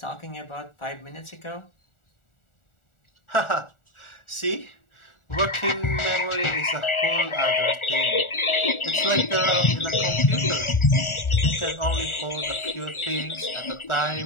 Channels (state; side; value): late; right; 1.4 ms